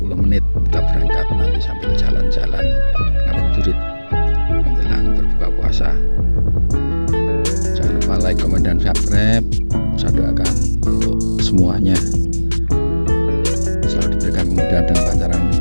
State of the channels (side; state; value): both; inverted; correlation -1.00